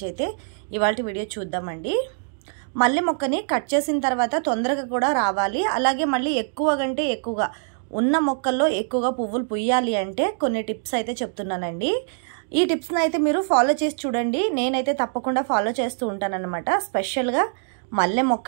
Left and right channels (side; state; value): left; silent; digital silence